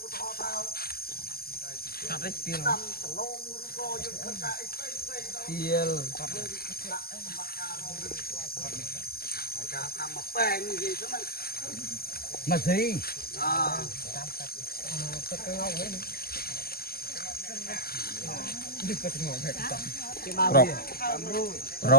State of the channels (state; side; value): late; right; 0.45 ms